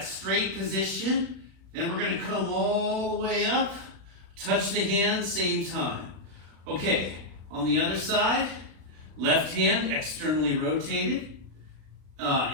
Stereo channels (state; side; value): late; left; 36 ms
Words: straight position. Then we're going to come all the way up, touch the hand, same time. Okay, on the other side, left hand externally rotated.